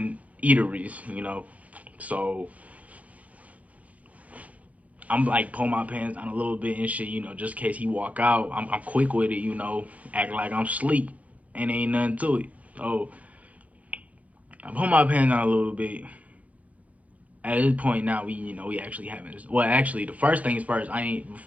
eateries, so I'm like pull my pants down a little bit and shit, just in case he walk out. I'm quick with it, act like I'm sleep and ain't nothing to it. So I pull my pants down a little bit. At this point now, we actually having this. Well, actually, the first things first. I ain't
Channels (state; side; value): late; left; 0.069 ms